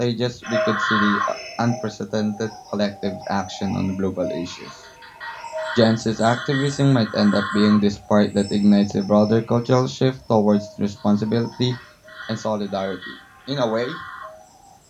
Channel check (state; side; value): identical; both; correlation 1.00